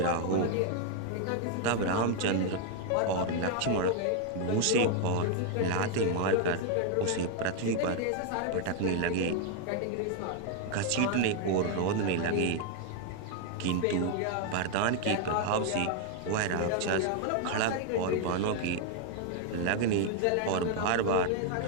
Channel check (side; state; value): both; different; correlation 0.00